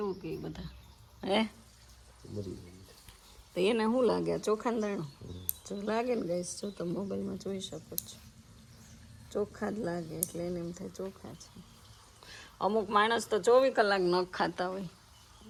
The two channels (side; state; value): both; identical; correlation 1.00